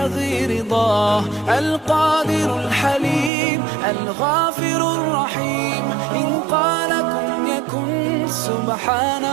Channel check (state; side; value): drops out; left; at 3.3 s